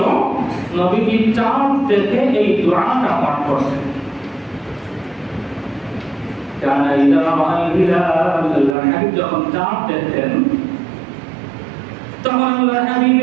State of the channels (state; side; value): drops out; left; at 8.8 s